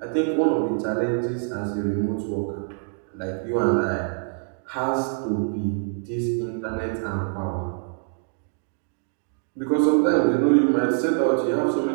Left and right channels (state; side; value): silent; left; 62 dB below the other